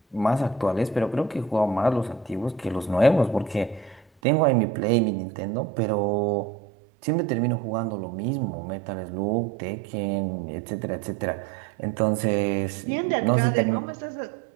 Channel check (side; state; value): left; drops out; at 4.0 s